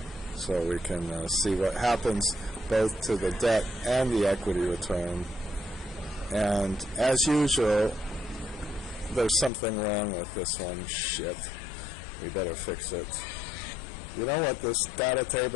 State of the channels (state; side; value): drops out; right; at 9.5 s